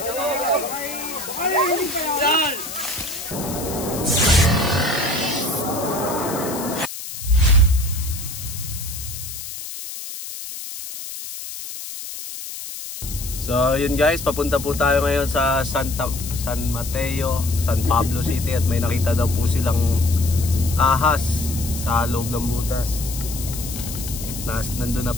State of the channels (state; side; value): noise; left; hiss, 9 dB below the sound